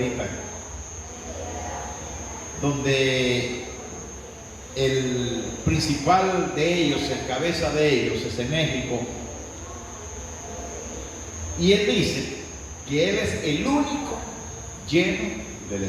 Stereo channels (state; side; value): identical; both; correlation 1.00